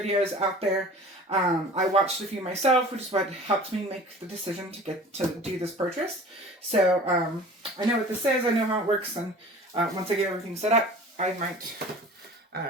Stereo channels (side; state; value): both; normal; correlation 0.43